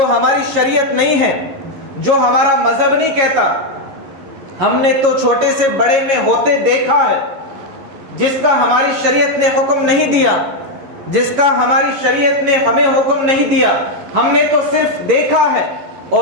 ہماری شریعت نہیں ہے، جو ہمارا مذہب نہیں کہتا۔ ہم نے تو چھوٹے سے بڑے میں ہوتے دیکھا ہے، جس کا ہماری شریعت نے حکم نہیں دیا، جس کا ہماری شریعت نے ہمیں حکم نہیں دیا، ہم نے تو صرف دیکھا ہے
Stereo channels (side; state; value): left; late; 11 ms